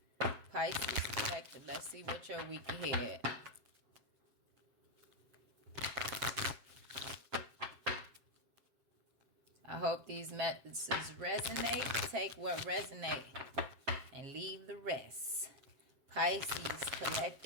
Pisces Collective. Let's see what your week ahead. I hope these messages resonate. Take what resonates and leave the rest. Pisces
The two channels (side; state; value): left; late; 7.5 ms